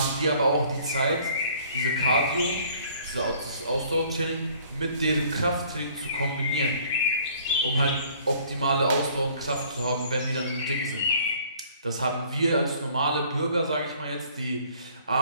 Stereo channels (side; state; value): both; inverted; correlation -0.56